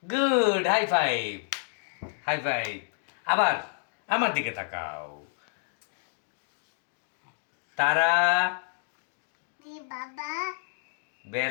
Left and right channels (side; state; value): right; silent; digital silence